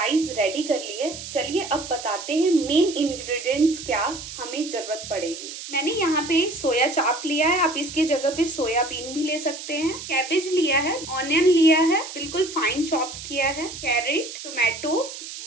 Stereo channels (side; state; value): right; noise; hiss, 10 dB below the sound